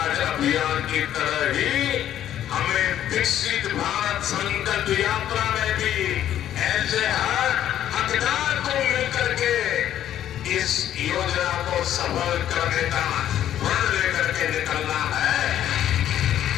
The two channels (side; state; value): right; quieter; 11.3 dB